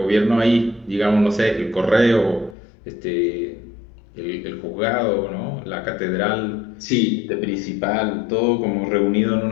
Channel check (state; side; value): drops out; right; at 2.6 s